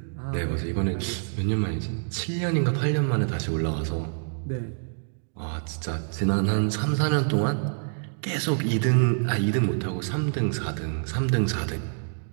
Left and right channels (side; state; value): left; silent; digital silence